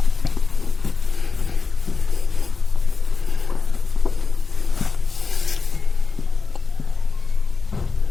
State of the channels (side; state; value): right; quieter; 4.5 dB